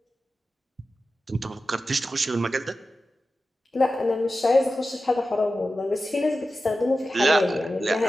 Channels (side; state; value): both; normal; correlation 0.93